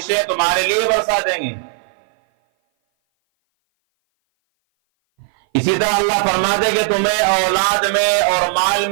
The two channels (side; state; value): left; silent; 58 dB below the other